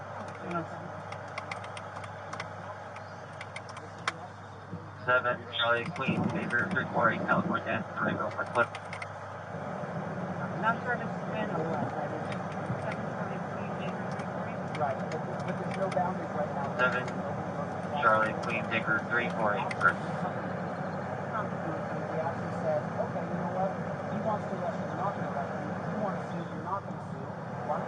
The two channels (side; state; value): both; identical; correlation 1.00